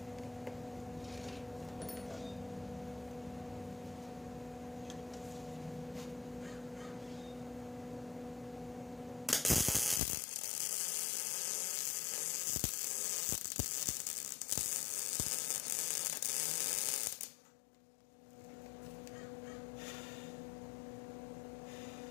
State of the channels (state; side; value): drops out; right; at 10.0 s